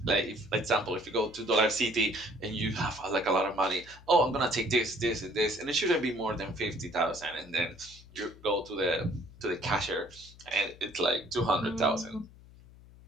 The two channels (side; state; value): left; noise; hum, 22 dB below the sound